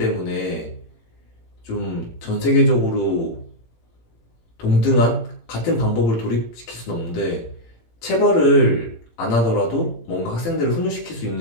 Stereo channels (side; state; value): right; late; 18 ms